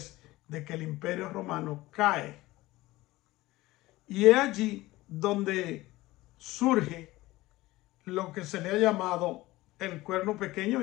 de que el Imperio Romano cae. Y es allí donde surge lo que se le ha llamado el cuerno pequeño,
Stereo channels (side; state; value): right; quieter; 18.5 dB